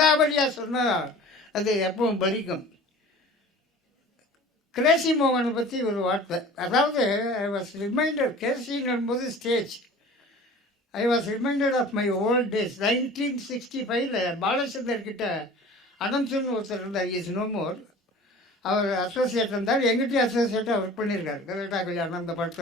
சொன்னால் அது எப்பவும் பலிக்கும். கிரேசி மோகனை பற்றி ஒரு வார்த்தை. அதாவது ஐ வாஸ் ரிமைண்டட், கேசிங்கும்போது stage, I was reminded of my old days. 1965 பாலச்சந்தர்கிட்ட அனந்தன் ஒருத்தர் இருந்தார். Is no more. அவர் அசோசியேட் இருந்தார். எங்கிட்டையும் அசோசியேட்டாக ஒர்க் பண்ணியிருக்கார். கரெக்டா கல்யாணம் அந்த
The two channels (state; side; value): normal; both; correlation 0.43